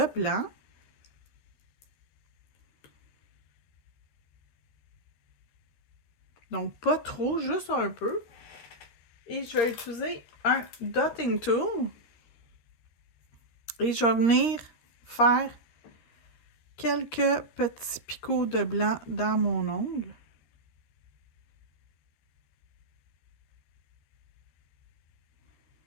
blanc. Donc, pas trop, juste un peu. Et je vais utiliser un dotting tool. Et je vais venir faire quelques petits picots de blanc dans mon ongle.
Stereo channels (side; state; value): right; late; 13 ms